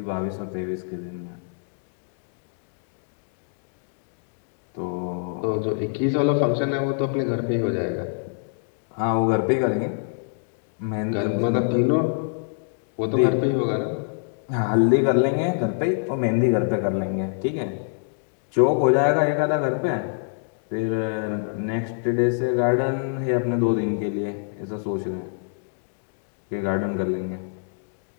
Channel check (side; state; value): right; silent; digital silence